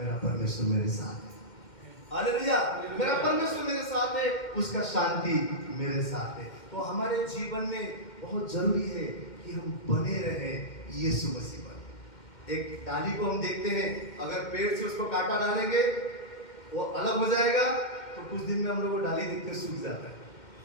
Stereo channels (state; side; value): late; right; 2.1 ms